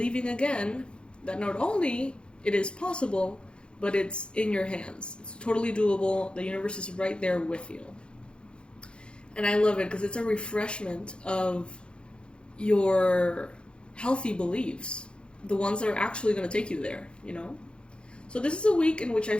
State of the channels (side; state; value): right; late; 0.055 ms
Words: again that not only it is possible, but it's in your hands. It's totally doable. The universe is right there with you. And I love it because it's a refreshment of your healthy beliefs, the ones that are actually going to take you there, you know? So this is a week in which I